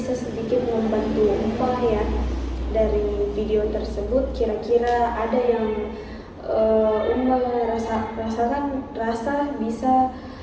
sedikit membantu Uma ya. Dari video tersebut kira-kira ada yang Uma rasa bisa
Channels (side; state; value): both; identical; correlation 1.00